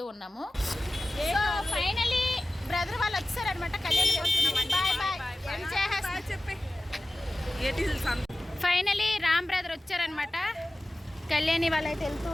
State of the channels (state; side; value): normal; both; correlation 0.96